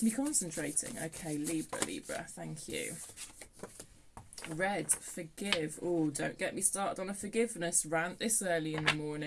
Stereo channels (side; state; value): both; identical; correlation 1.00